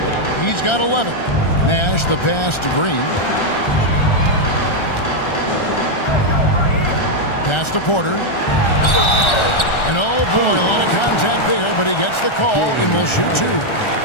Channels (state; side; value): late; right; 1.3 ms